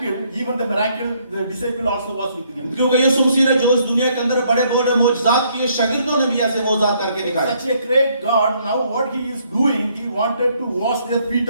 even the miracle, the disciple also was with him. क्योंकि यीशु मसीह ने जो इस दुनिया के अंदर बड़े बड़े मौजज़ात किए, शागिर्दों ने भी ऐसे मौजज़ात करके दिखाए। Such a great God, now what he is doing, he wanted to wash their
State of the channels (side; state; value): both; inverted; correlation -0.68